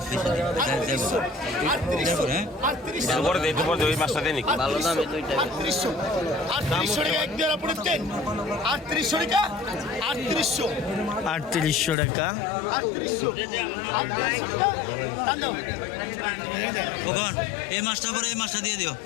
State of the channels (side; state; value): right; drops out; at 12.0 s